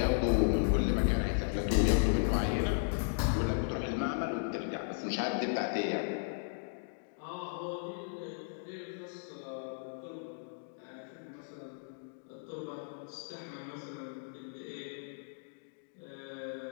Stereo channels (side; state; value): right; silent; digital silence